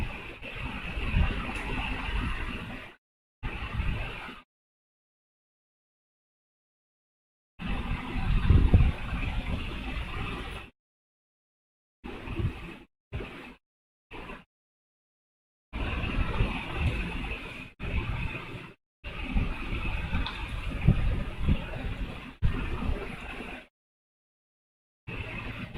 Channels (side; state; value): both; identical; correlation 1.00